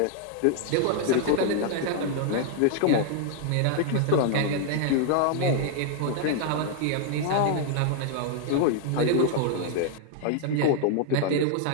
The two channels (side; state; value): both; different; correlation 0.00